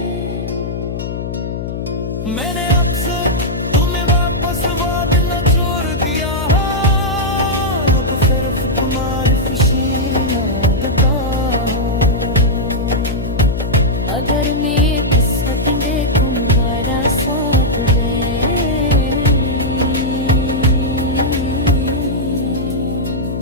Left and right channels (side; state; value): left; noise; hum, 5 dB below the sound